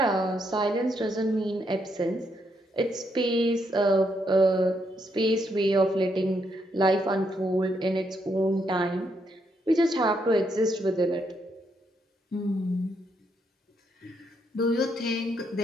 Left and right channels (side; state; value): both; normal; correlation 0.77